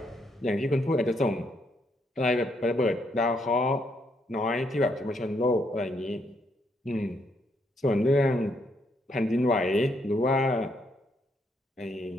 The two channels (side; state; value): both; normal; correlation 0.74